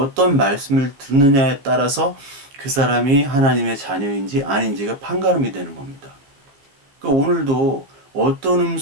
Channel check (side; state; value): left; late; 15 ms